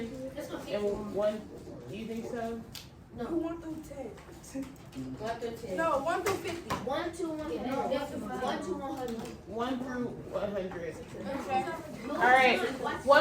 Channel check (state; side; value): identical; both; correlation 1.00